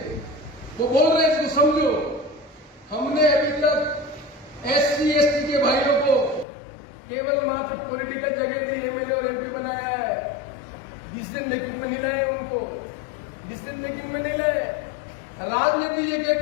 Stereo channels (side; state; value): right; drops out; at 6.5 s